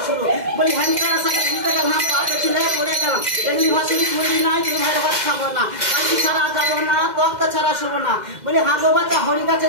শুরু। বলি হ্যান্ডকার সাথে ঘুরতে গেলাম পাতে ছিলে পড়ে গেলাম, এমনি ভাষণী তুলি নাই তুই ভাইয়ের ভাত খাবো না, কালকি ছাড়া যাবো না তক্তা ছাড়া শোবো না। বলি হাঁগো বাচ্চা হরি গাছে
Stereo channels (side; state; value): left; late; 2.1 ms